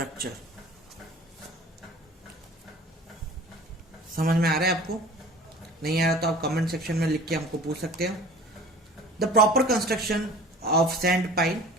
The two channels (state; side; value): normal; both; correlation 0.43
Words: समझ में आ रहा है आपको? नहीं आ रहा तो आप कमेंट सेक्शन में लिख के हमको पूछ सकते हो। The proper construction of sand pile